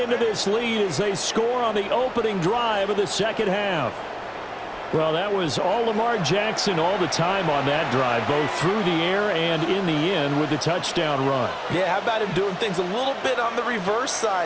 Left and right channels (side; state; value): both; identical; correlation 1.00